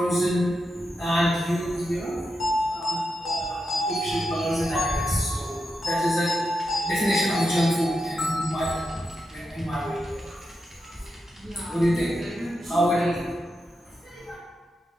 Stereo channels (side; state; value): both; normal; correlation 0.87